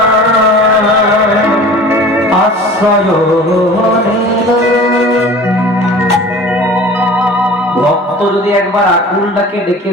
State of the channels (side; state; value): both; normal; correlation 0.41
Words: ভক্ত যদি একবার আকুলটাকে ডেকে